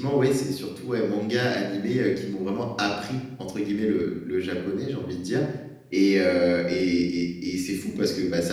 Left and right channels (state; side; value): identical; both; correlation 1.00